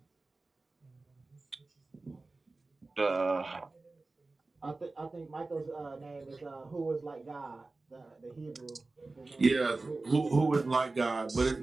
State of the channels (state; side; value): quieter; left; 3.4 dB